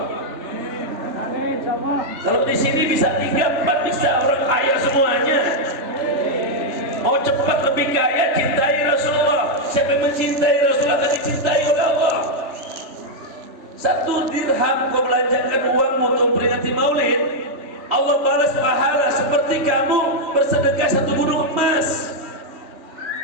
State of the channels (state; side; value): late; left; 3.4 ms